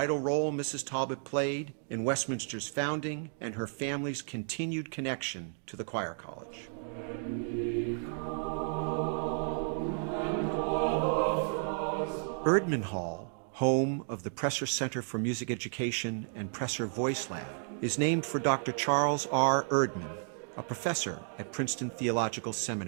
role Mrs. Talbot played in Westminster's founding and her family's continued connection to the Choir College. Erdman Hall, home of the Presser Center for Music Education and Presser Voice Lab, is named for Dr. Charles R. Erdman, a professor at Princeton Theological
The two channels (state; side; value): silent; left; 56 dB below the other